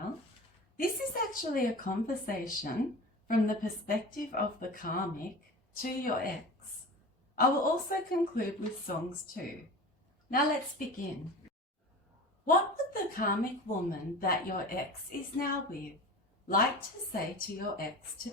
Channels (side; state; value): both; normal; correlation 0.34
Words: This is actually a conversation from the perspective of the Karmic to your ex. I will also conclude with songs too. Now let's begin. What would the Karmic woman that your ex is now with like to say to your ex